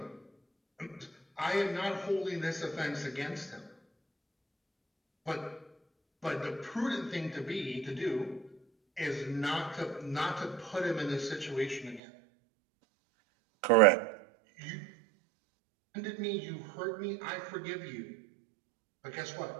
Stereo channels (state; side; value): drops out; left; at 12.0 s